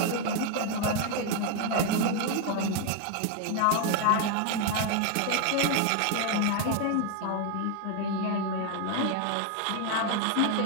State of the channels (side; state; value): both; different; correlation 0.01